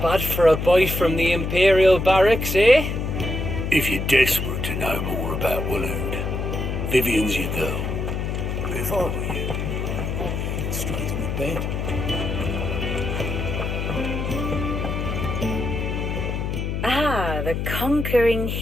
bad for a boy from the Imperial barracks, eh? If you're desperate to know more about Waloed, Vivian's your girl. If I were you, I'd get straight in the bed. Ah, the conquering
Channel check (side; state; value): left; noise; hum, 2 dB below the sound